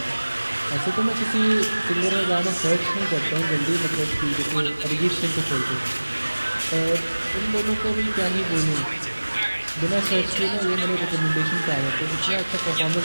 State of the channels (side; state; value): both; inverted; correlation -1.00